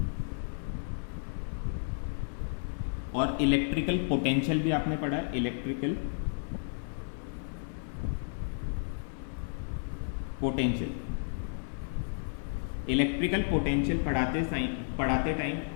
और इलेक्ट्रिकल पोटेंशियल भी आपने पढ़ा है, इलेक्ट्रिकल पोटेंशियल इलेक्ट्रिकल पोटेंशियल पढ़ाते टाइम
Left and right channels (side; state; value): right; silent; 56 dB below the other